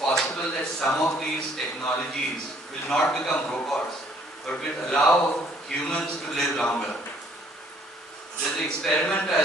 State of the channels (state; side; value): normal; both; correlation 0.62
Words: that some of these technologies will not become robots, but will allow humans to live longer. There's an experiment I